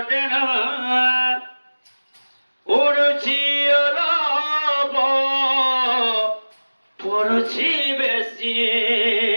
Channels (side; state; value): both; inverted; correlation -1.00